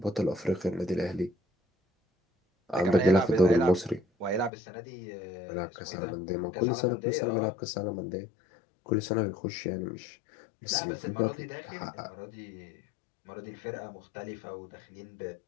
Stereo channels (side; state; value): right; drops out; at 4.5 s